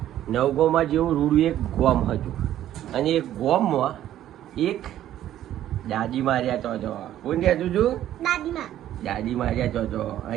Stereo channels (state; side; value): quieter; left; 12.2 dB